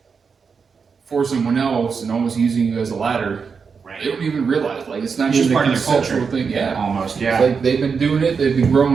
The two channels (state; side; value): quieter; left; 5.6 dB